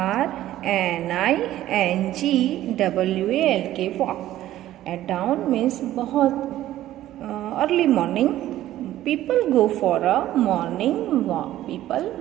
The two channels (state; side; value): quieter; left; 13.8 dB